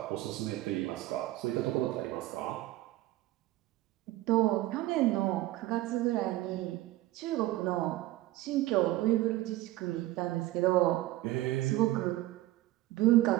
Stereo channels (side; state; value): left; quieter; 16.8 dB